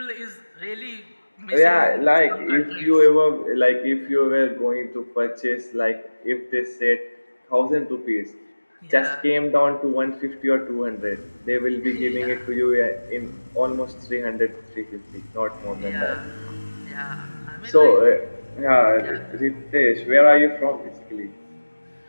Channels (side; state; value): both; inverted; correlation -1.00